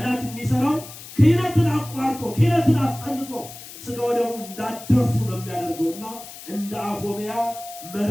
የሚሰራው ክህነትን አቋርጦ ክህነትን አስጠልቶ ስጋ ወደሙ እንዳደርሱ ነው የሚያደርገውና እንደ አፎምያ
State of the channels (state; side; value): noise; left; hiss, 15 dB below the sound